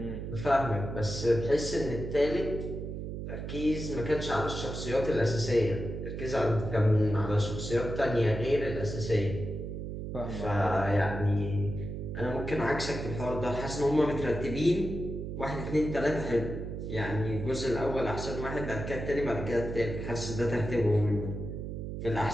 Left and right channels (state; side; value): noise; right; hum, 6 dB below the sound